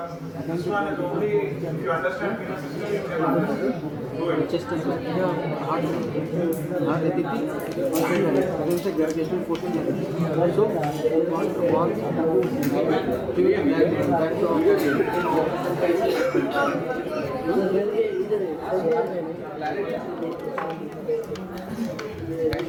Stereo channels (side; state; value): both; identical; correlation 1.00